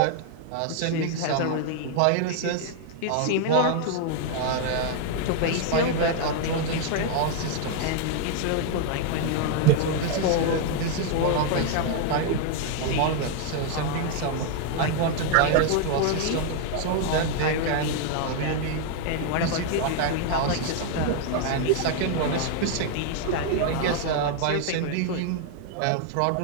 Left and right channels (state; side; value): different; both; correlation 0.00